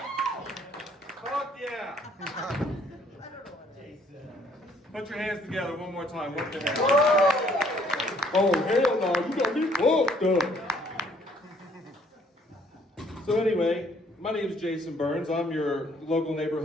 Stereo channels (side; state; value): both; normal; correlation 0.63